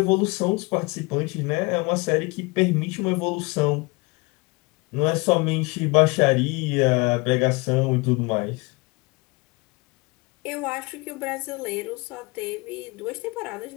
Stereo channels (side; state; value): right; quieter; 26.8 dB